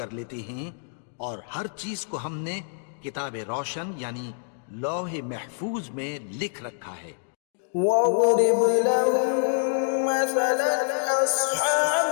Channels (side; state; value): right; silent; digital silence